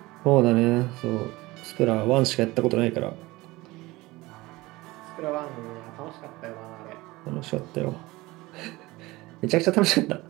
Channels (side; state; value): left; quieter; 20.4 dB